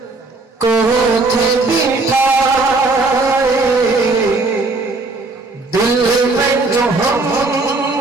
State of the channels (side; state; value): left; quieter; 3.5 dB